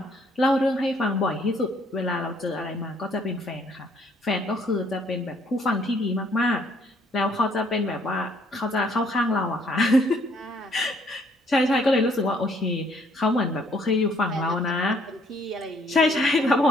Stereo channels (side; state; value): both; normal; correlation 0.64